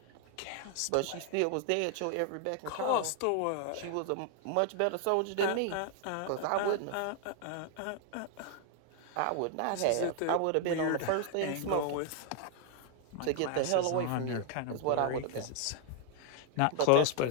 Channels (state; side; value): different; both; correlation 0.00